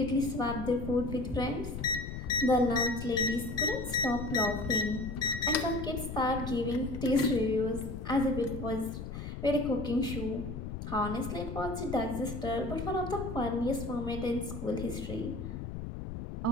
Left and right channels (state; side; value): noise; left; rumble, 7 dB below the sound